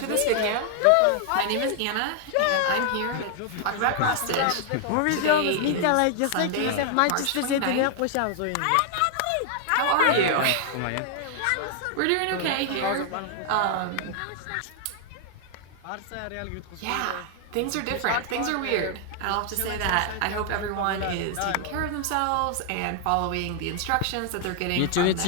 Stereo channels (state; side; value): different; both; correlation 0.00